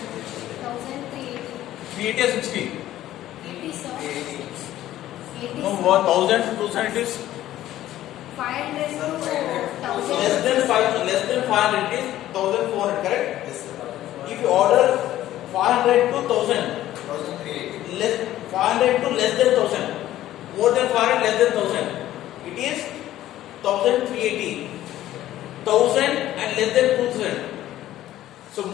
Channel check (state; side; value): quieter; right; 13.7 dB